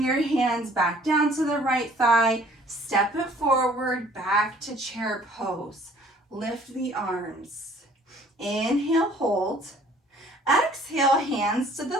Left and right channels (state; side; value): normal; both; correlation 0.55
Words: your hands back down to the right thigh, step it forward, back to chair pose. Lift the arms. Inhale, hold. Exhale, hands to the